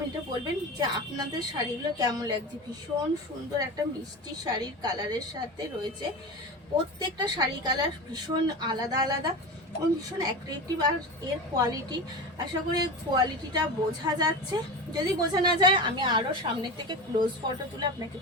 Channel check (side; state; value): both; normal; correlation 0.27